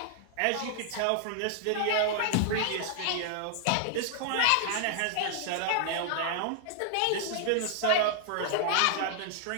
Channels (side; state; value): both; different; correlation -0.01